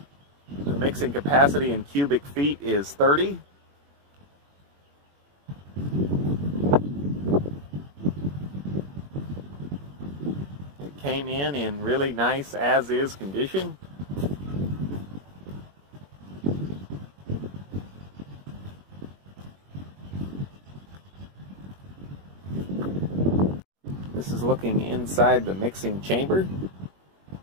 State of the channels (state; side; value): late; left; 21 ms